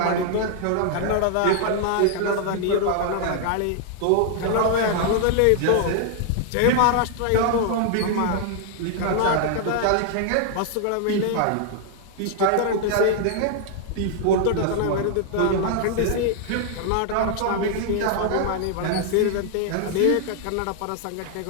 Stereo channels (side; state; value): both; different; correlation 0.00